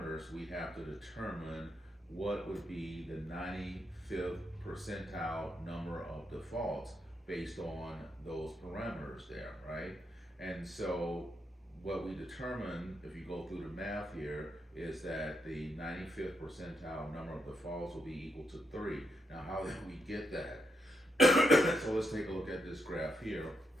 we have to determine what would be the 95th percentile number of defaults based on those parameters there, right? And so what we determine, if you go through the math here, is that the 95th percentile number of defaults will be equal to 3. Now, how did we get that? So let's take a look at this graph here.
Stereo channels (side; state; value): both; normal; correlation 0.81